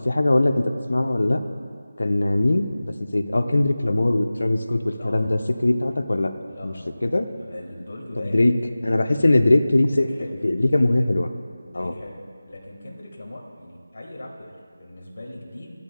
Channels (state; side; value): inverted; both; correlation -0.98